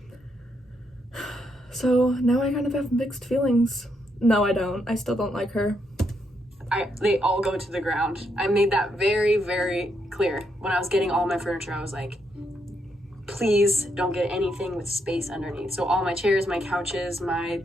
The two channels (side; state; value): both; normal; correlation 0.78